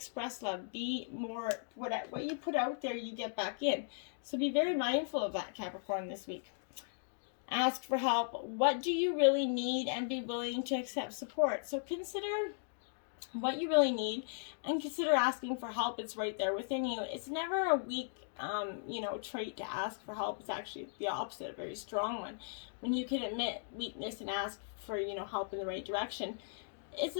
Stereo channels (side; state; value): right; silent; digital silence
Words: love. Be more, what you put out there, you get back in. So be very mindful of that, Capricorn, this week. Ask for help. What do you really need, and be willing to accept support. So consider what you really need and consider asking for help. It's right there within you. It's never a weak trait to ask for help. It's actually the opposite, a very strong one. When you can admit weakness and ask for, help in the right direction, it's